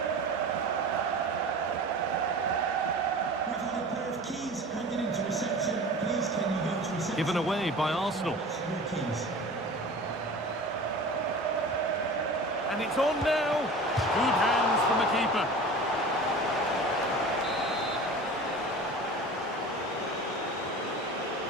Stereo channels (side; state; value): both; normal; correlation 0.37